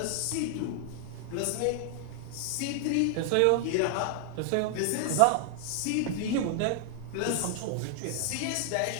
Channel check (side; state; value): both; different; correlation 0.00